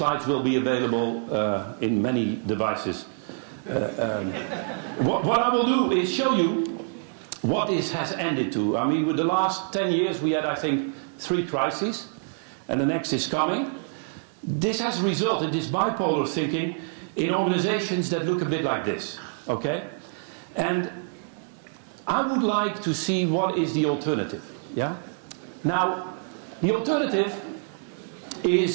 will be available in many devices. What I will do is show you what this has ended to. I mean, with the last 10 years we had, I think, 3 crises, and the next is coming. This has resulted, this bipolar thinking, in organizations that look a bit like this, okay? And I would like to see what is the alternative, yeah? Now, the alternative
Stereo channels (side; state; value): left; silent; digital silence